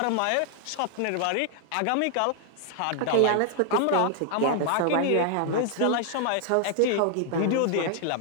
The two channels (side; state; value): both; different; correlation 0.00